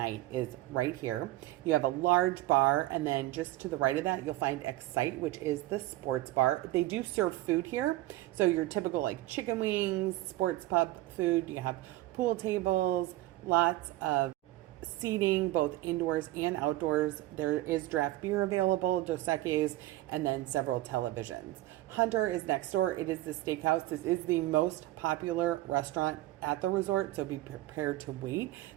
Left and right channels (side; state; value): left; quieter; 17.1 dB